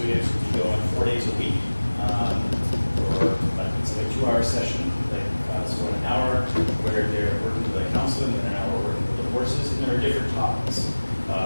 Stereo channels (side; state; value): both; inverted; correlation -1.00